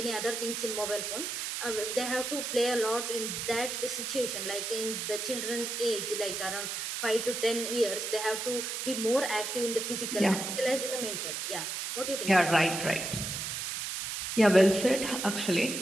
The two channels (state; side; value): noise; right; hiss, 4 dB below the sound